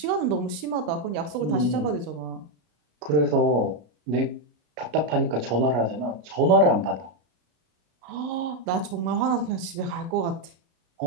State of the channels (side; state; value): left; late; 33 ms